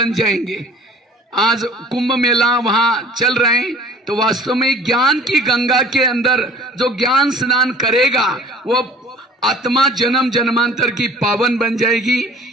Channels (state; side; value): normal; both; correlation 0.49